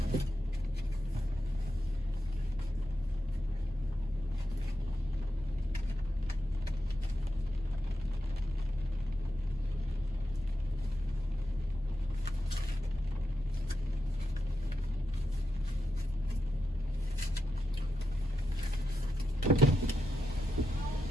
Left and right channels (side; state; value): both; normal; correlation 0.88